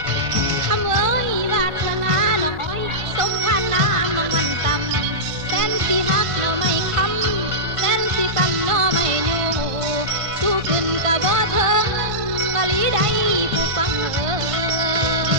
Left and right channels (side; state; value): left; late; 1.5 ms